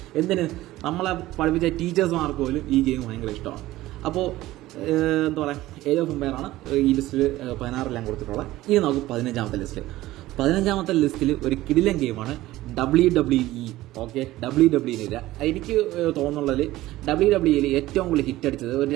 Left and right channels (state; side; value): quieter; left; 16.6 dB